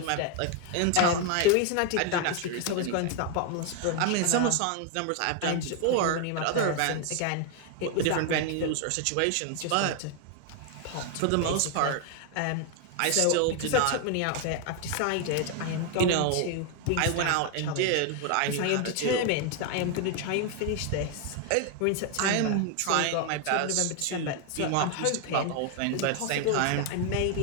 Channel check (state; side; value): different; both; correlation 0.01